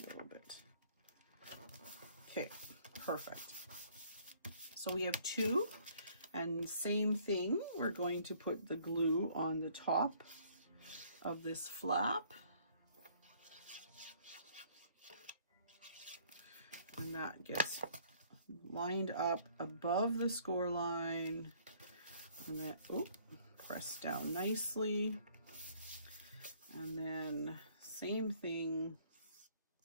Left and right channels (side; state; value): both; inverted; correlation -0.60